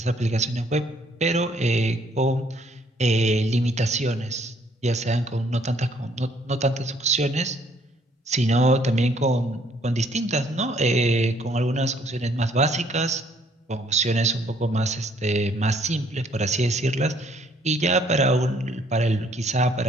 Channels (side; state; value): both; normal; correlation 0.64